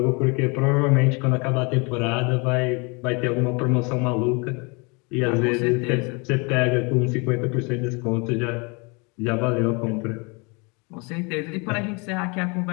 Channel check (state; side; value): quieter; right; 30.4 dB